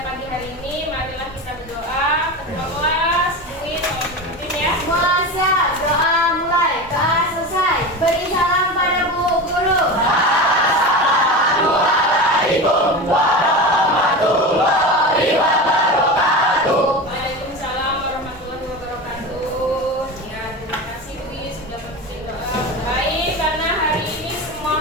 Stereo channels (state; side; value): normal; both; correlation 0.26